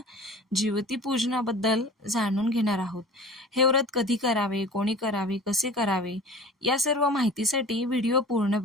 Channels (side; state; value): both; normal; correlation 0.41